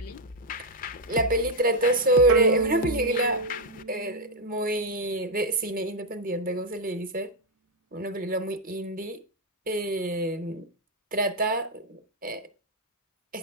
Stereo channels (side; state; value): both; normal; correlation 0.00